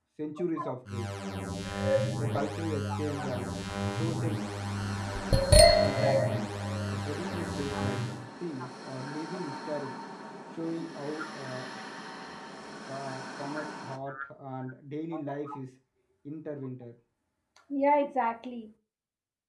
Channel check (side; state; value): both; identical; correlation 1.00